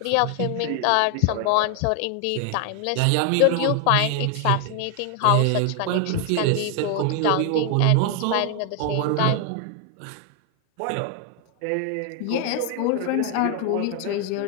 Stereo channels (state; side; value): different; both; correlation 0.00